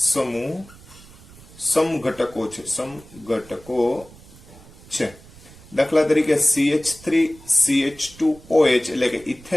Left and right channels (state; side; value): noise; right; rumble, 21 dB below the sound